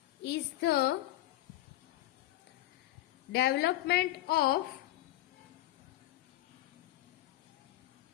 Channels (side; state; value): right; quieter; 15.9 dB